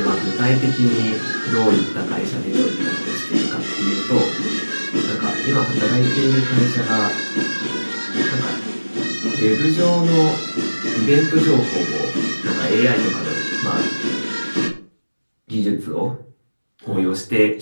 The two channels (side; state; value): both; inverted; correlation -1.00